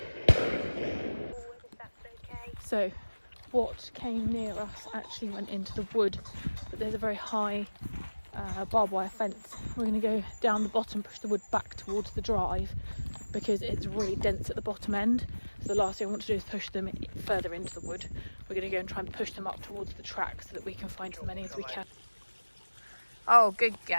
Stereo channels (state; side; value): inverted; both; correlation -1.00